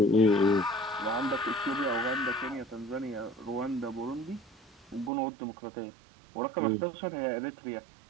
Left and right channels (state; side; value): drops out; left; at 5.1 s